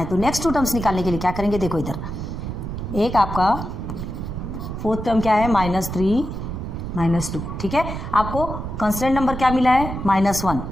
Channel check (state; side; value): noise; right; rumble, 6 dB below the sound